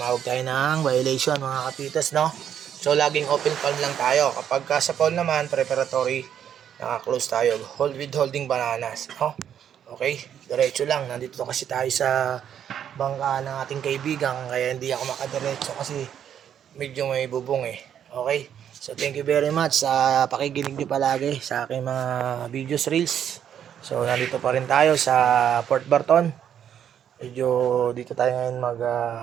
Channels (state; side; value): quieter; left; 9.3 dB